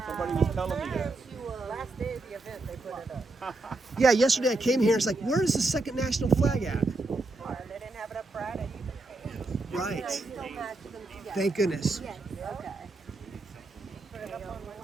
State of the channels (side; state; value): left; quieter; 3.1 dB